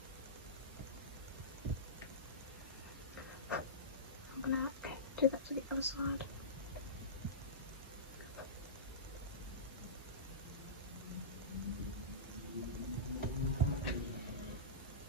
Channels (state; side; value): normal; both; correlation -0.20